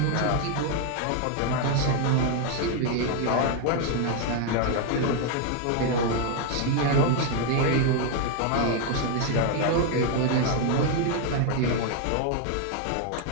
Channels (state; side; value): different; both; correlation 0.00